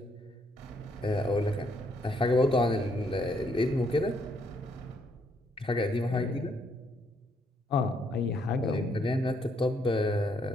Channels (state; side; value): normal; both; correlation 0.72